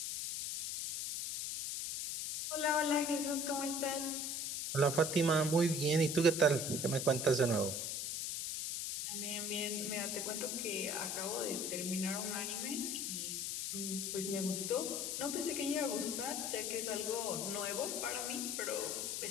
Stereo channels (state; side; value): noise; left; hiss, 2 dB below the sound